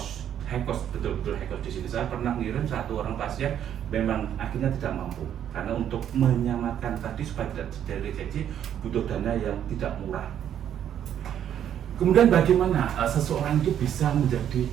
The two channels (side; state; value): left; quieter; 9.9 dB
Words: betul-betul high cost di sini. Saya pernah ngirim satu orang pasien memang akhirnya tidak mampu karena untuk menyamakan tadi supaya tidak terjadi rejeksi butuh dana yang tidak murah. Kemudian bagaimana seseorang itu bisa menjadi